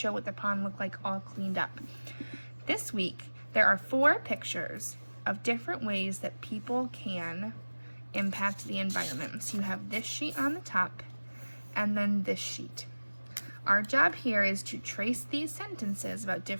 what the pond looked like all cleaned up. This week there are 4 pictures of different ways that people can impact the environment. So you have this sheet on the top and then this sheet. Our job here is to trace these sentences about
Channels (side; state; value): both; inverted; correlation -1.00